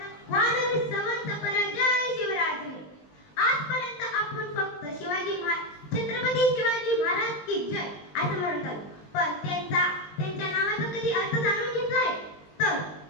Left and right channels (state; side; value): late; right; 20 ms